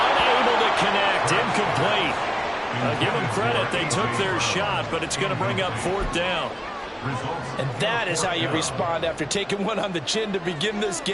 unable to connect. Incomplete. Give them credit. They took their shot, but it's going to bring up 4th down. And that is how you respond after taking one on the chin to begin this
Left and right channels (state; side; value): identical; both; correlation 1.00